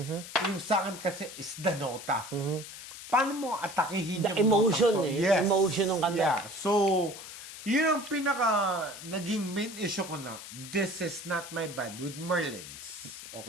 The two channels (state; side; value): noise; left; hiss, 12 dB below the sound